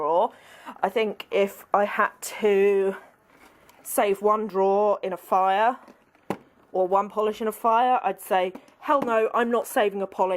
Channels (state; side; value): identical; both; correlation 1.00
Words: I think if I had to save one drawer in a fire or one polish in a fire, I'd say, hell no, I'm not saving a